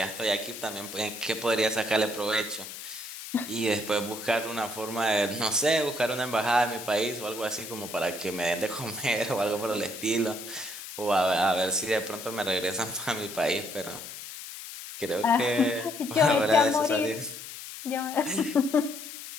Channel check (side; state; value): left; noise; hiss, 11 dB below the sound